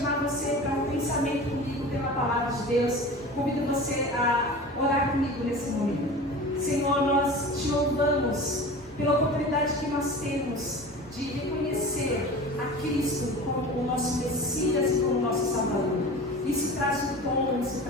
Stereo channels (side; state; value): both; normal; correlation 0.35